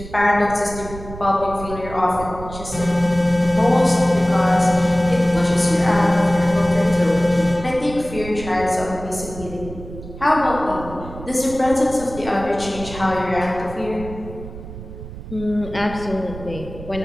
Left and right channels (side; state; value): right; noise; rumble, 13 dB below the sound